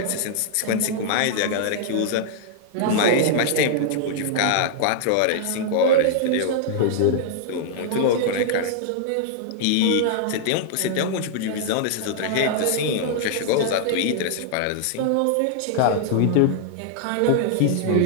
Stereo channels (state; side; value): different; both; correlation -0.01